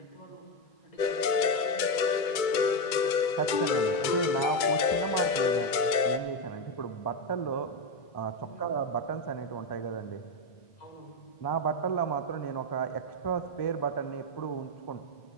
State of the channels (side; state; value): right; late; 2.2 ms